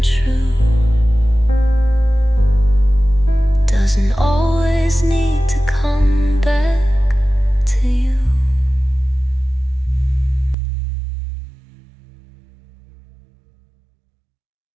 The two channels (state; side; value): drops out; left; at 10.6 s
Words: true, doesn't always need to come back to you.